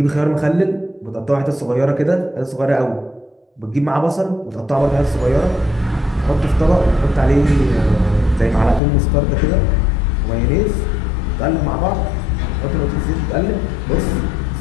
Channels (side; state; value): right; drops out; at 8.8 s